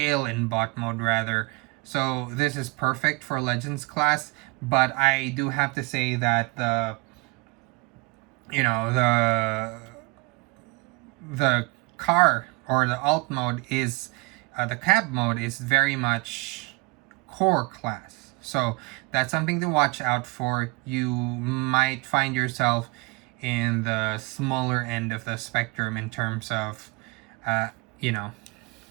in bot mode rather. So this is perfect for Legends class. But I do have to say that you know the car or the alt mode is the cab mode is very much core class. So that's something to watch out for. You might find yourself in the smaller end of the spectrum in terms of uh, you know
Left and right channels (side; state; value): left; quieter; 26.5 dB